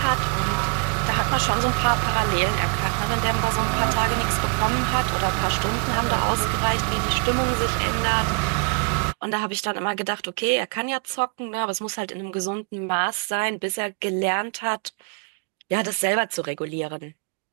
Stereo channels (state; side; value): quieter; left; 38.0 dB